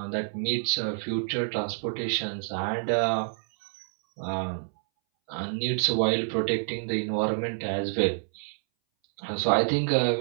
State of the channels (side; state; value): left; silent; 60 dB below the other